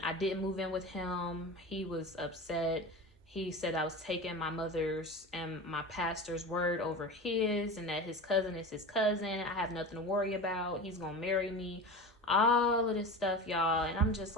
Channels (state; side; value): normal; both; correlation 0.29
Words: I didn't move in with him, he was upset. He said I was taking my mother's and my pastor's word over his, and that his cousin is his cousin. I have nothing to worry about. He's gonna marry me. All of this stuff, y'all. And I'm just